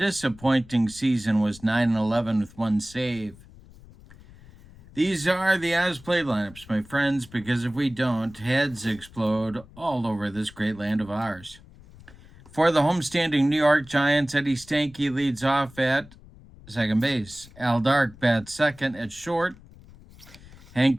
season, was 9-11 with 1 save. These are the as-played lineups, my friends, because if we don't, heads explode all over this great land of ours. For the homestanding New York Giants, Eddie Stanky leads off at second base. Al Dark bats second at short. Hank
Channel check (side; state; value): left; noise; rumble, 22 dB below the sound